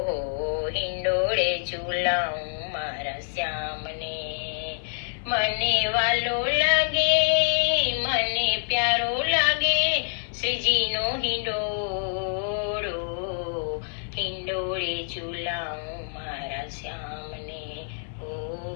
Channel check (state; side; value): silent; right; digital silence